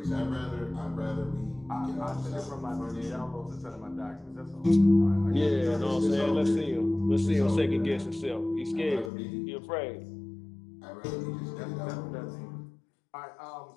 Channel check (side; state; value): right; drops out; at 9.1 s